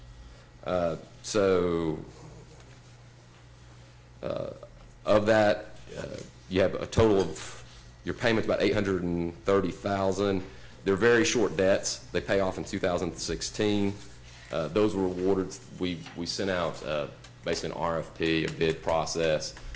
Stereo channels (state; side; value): identical; both; correlation 1.00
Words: Of that, you have a total of, your payment's about $830,000. They're very short debts. They pay off in 2016. Those were awarded, we sent out basically an RFP, a bid process.